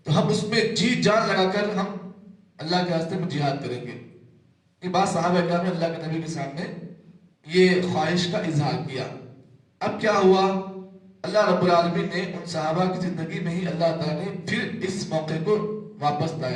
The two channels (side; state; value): both; identical; correlation 1.00